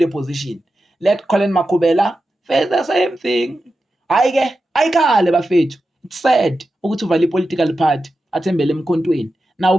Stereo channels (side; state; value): both; normal; correlation 0.91